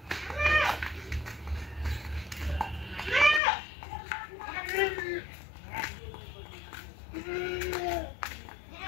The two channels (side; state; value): right; drops out; at 3.4 s